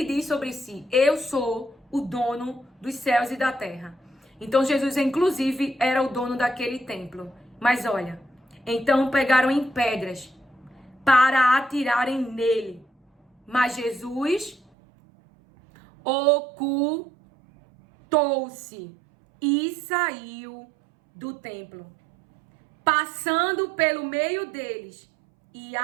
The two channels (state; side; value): drops out; left; at 14.6 s